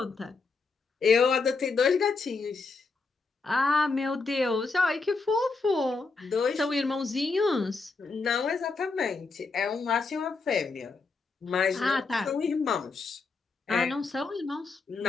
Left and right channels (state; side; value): quieter; right; 4.2 dB